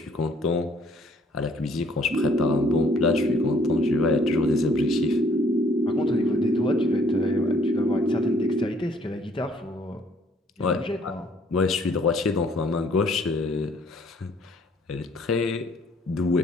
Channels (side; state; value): both; normal; correlation 0.62